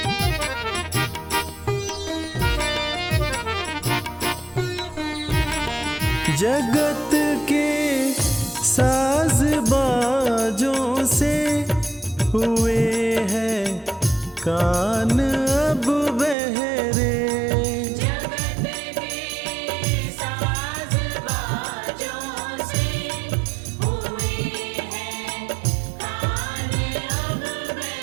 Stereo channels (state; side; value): drops out; left; at 16.4 s